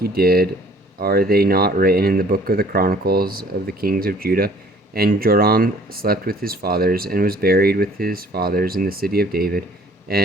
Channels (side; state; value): both; normal; correlation 0.55